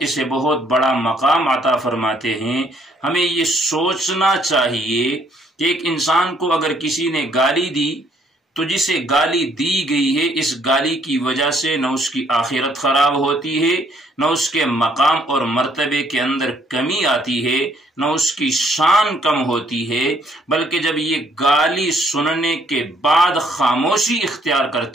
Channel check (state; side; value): normal; both; correlation 0.66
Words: اسے بہت بڑا مقام عطا فرماتے ہیں۔ ہمیں یہ سوچنا چاہیے کہ ایک انسان کو اگر کسی نے گالی دی تو جسے گالی دی گئی ہے اس گالی کی وجہ سے نہ اس کی آخرت خراب ہوتی ہے، نہ اس کے مقام اور مرتبے کے اندر کمی آتی ہے، نہ اس کی شان کم ہوتی ہے، بلکہ جب یہ گالی سننے کے بعد خاموشی اختیار